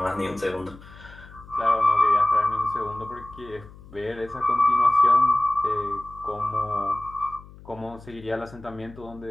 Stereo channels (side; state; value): left; noise; hum, 20 dB below the sound